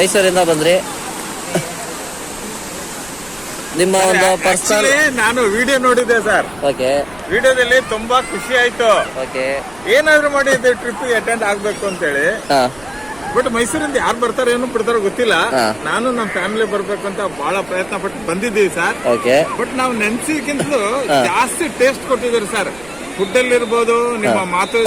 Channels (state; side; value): noise; right; rumble, 22 dB below the sound